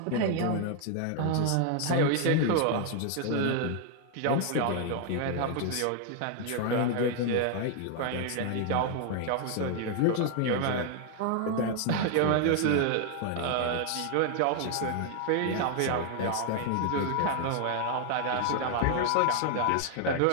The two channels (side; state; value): both; different; correlation 0.00